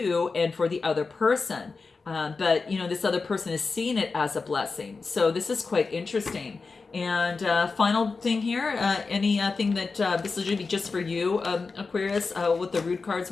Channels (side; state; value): right; quieter; 4.3 dB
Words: and for the other person. But this other person is seeing it as a blessing. So this is quite interesting. And final thing here, anything that this is going to be just for you, Aquarius, what the root cards